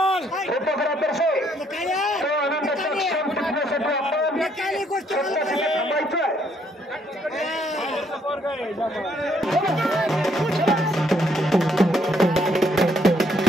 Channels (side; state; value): both; normal; correlation 0.69